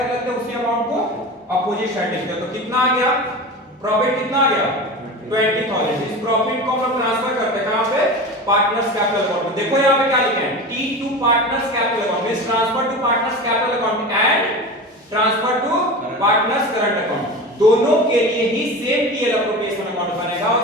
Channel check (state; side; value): normal; both; correlation 0.30